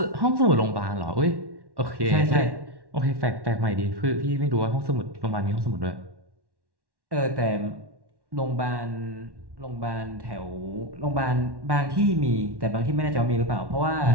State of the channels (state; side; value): late; left; 1.1 ms